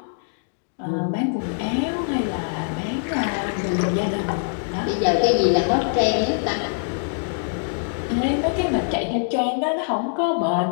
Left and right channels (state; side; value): silent; right; digital silence